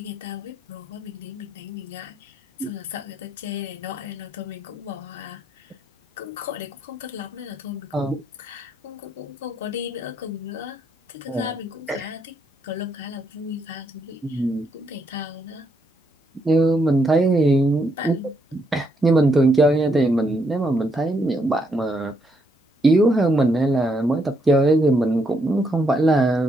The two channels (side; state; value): both; normal; correlation 0.75